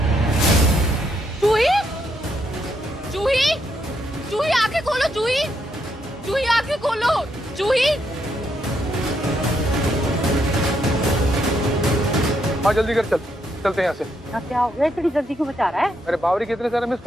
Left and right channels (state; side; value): normal; both; correlation 0.77